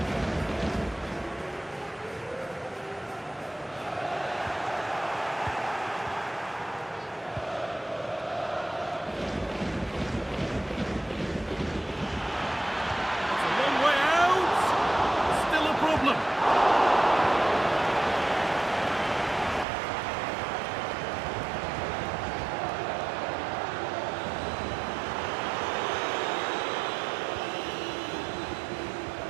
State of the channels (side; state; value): left; drops out; at 19.7 s